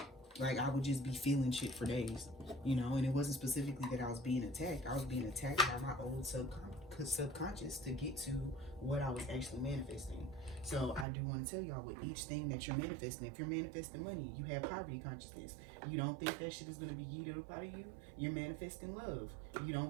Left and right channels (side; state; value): left; drops out; at 11.1 s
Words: Like, I would just be feeling shit for days, you know. And it wasn't specifically that I was being attacked. I was being attacked by my old subconscious to get to what I was actually manifesting. So I do want to tell y'all, with each thing that you're manifesting, if you're manifesting money, you have poverty consciousness. You don't think that shit is going to be yeeted up out of you, you're manifesting love. You